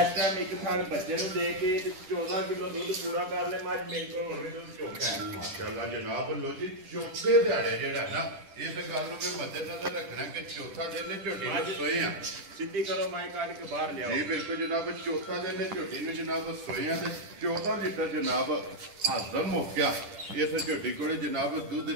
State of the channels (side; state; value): left; late; 10 ms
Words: टाइम एक थन बच्चे नु दे के ਕੇ ਤੇ 14 ਕਿਲੋ ਦੁੱਧ ਪੂਰਾ ਕਰ ਲੈ ਮੱਝ ਮੇਰੇ ਕੋਲ ਹੁਣ ਵੀ ਦੁੱਧ ਚੋਖਾ ਹੈ। ਮਾਸ਼ਾਅੱਲਾ ਜਨਾਬ ਲੋ ਜੀ ਚੌਥੇ ਦਿਹਾੜੇ ਜਿਹੜਾ ਨਾ ਇਸ ਗੱਲ ਨੂੰ ਵੀ ਮੱਦੇਨਜ਼ਰ ਰੱਖਣਾ ਕਿ ਚੌਥਾ ਦਿਨ ਨੇ ਝੋਟੀ ਨੂੰ ਸੋਏ ਆ। ਸਿੱਧੀ ਕਰੋ ਮਾਈ ਕੱਢ ਕੇ ਬਾਹਰ ਲਿਆਓ। ਜੀ ਬਿਲਕੁਲ ਜਨਾਬ ਚੌਥਾ ਦਿਨ ਨੇ ਝੋਟੀ ਨੂੰ ਜਨਾਬ ਸੋਏ ਆ ਤੇ 14 ਲੀਟਰ ਜਨਾਬ ਹਾਜ਼ਮ ਹੋ ਗਿਆ। ਇਸ ਝੋਟੀ ਕੋਲੇ ਜਨਾਬ ਦੁੱਧ